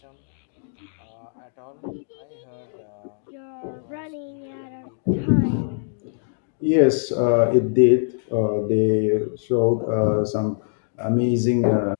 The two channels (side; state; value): right; silent; digital silence